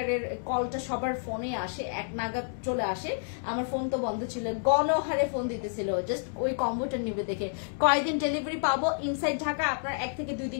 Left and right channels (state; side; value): silent; right; digital silence